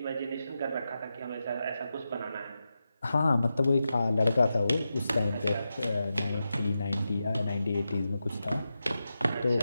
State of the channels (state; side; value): inverted; both; correlation -0.90